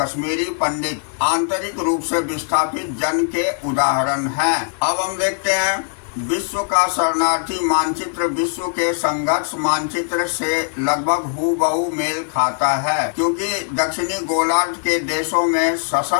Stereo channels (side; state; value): right; silent; 66 dB below the other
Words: पंडित आंतरिक रूप से विस्थापित जन के उदाहरण हैं। अब हम देखते हैं विश्व का शरणार्थी मानचित्र विश्व के संघर्ष मानचित्र से लगभग हूबहू मेल खाता है, क्योंकि दक्षिणी गोलार्ध के देशों में